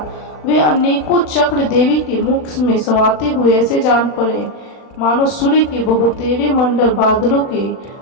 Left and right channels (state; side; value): late; right; 40 ms